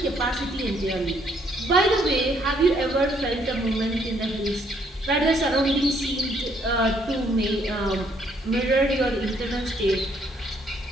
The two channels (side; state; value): both; normal; correlation 0.68